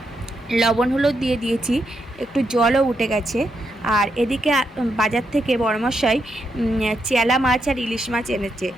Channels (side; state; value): both; normal; correlation 0.81